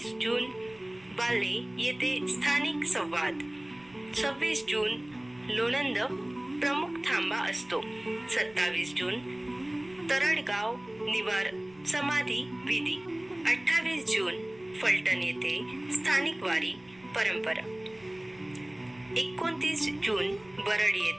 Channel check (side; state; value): right; noise; rumble, 27 dB below the sound